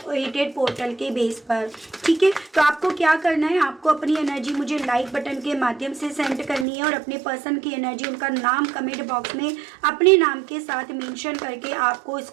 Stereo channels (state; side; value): drops out; left; at 6.7 s